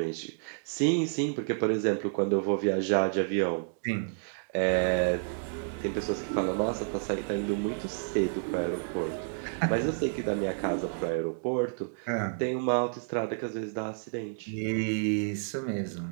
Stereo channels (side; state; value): left; silent; digital silence